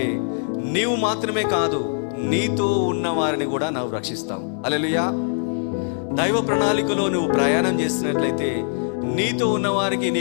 నీవు మాత్రమే కాదు, నీతో ఉన్న వారిని కూడా నువ్వు రక్షిస్తావు. హల్లెలూయా. దైవ ప్రణాళికలో నువ్వు ప్రయాణం చేస్తున్నట్లయితే నీతో ఉన్న వారికి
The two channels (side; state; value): right; silent; digital silence